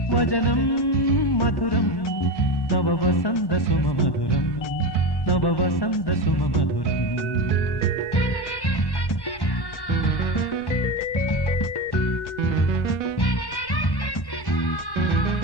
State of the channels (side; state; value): right; late; 1.1 ms